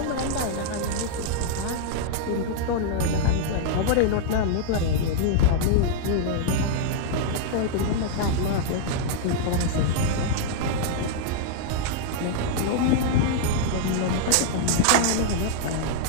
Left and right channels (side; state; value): both; different; correlation -0.01